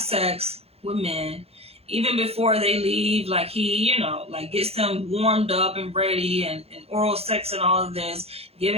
with men, even before they leave. Like he, like gets them warmed up and ready, and oral sex and all of this,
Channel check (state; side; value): late; left; 0.29 ms